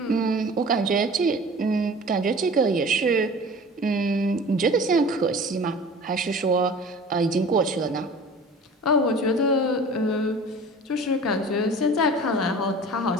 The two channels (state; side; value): normal; both; correlation 0.42